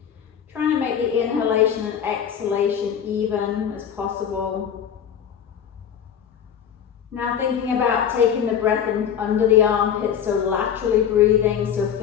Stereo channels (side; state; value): right; quieter; 8.5 dB